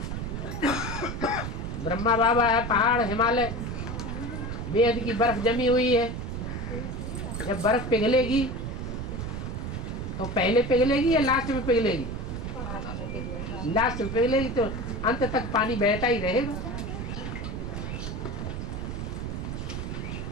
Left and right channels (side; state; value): right; noise; rumble, 5 dB below the sound